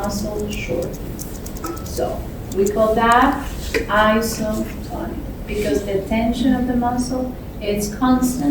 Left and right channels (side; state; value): both; identical; correlation 1.00